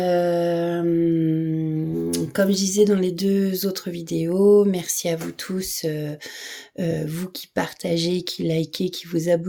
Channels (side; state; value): both; identical; correlation 1.00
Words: Comme je disais dans les 2 autres vidéos, merci à vous tous, vous qui partagez, qui likez, qui vous